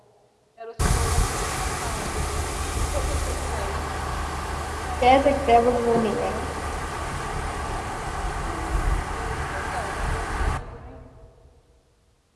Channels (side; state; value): both; identical; correlation 1.00